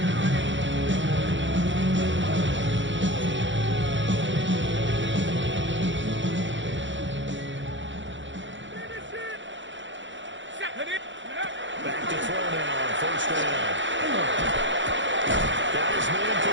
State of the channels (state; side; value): late; left; 0.54 ms